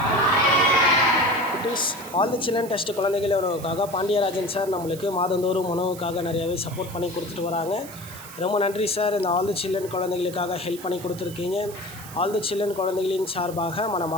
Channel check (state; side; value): noise; right; hiss, 16 dB below the sound